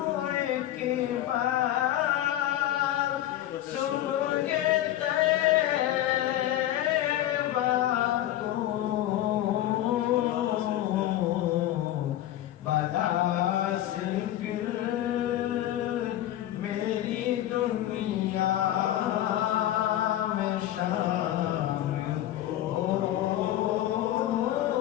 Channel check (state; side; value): quieter; right; 13.2 dB